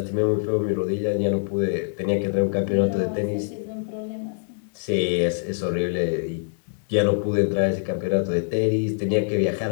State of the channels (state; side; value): silent; right; digital silence